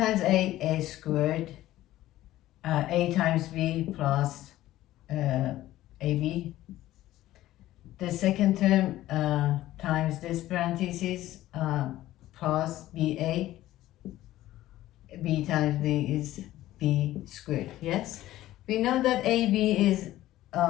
A squared. A times B plus AB. The second term times this parenthesis plus BA. B times B is B squared. Yes? We know that AB is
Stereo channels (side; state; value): right; quieter; 15.0 dB